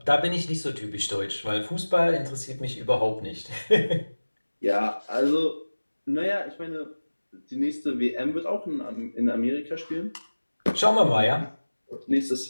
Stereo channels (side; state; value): both; inverted; correlation -1.00